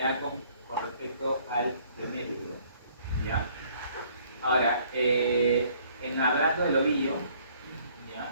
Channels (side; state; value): both; inverted; correlation -0.61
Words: con respecto al glomérulo. ¿Ya? Ahora, hablando del ovillo, ¿ya?